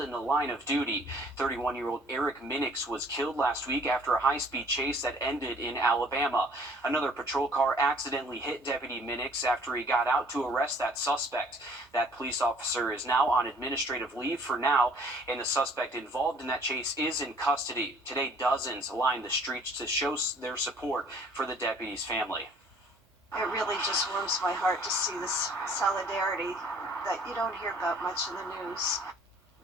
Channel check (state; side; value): normal; both; correlation 0.56